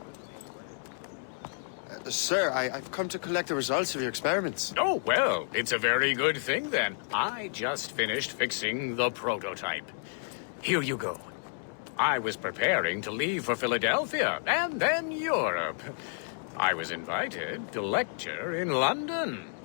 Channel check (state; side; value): silent; right; 57 dB below the other